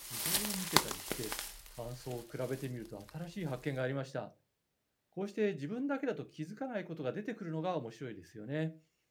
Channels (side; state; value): both; identical; correlation 1.00